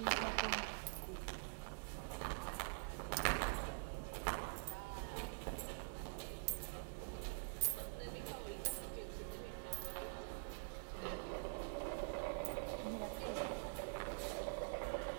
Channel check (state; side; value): silent; left; digital silence